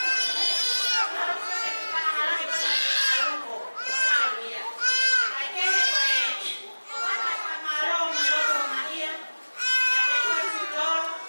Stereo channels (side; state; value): both; inverted; correlation -1.00